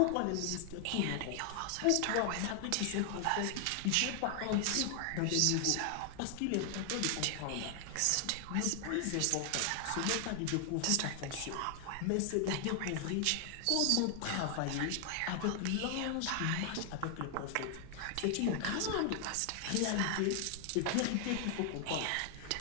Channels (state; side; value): different; both; correlation 0.00